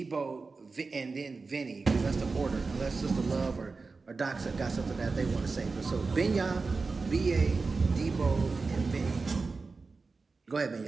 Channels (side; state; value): left; quieter; 4.2 dB